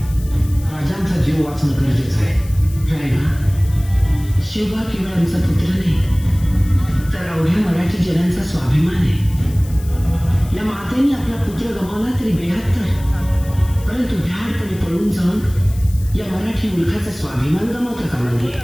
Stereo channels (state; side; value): noise; left; hiss, 20 dB below the sound